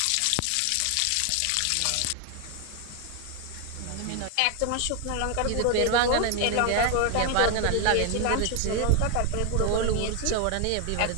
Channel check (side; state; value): both; different; correlation 0.00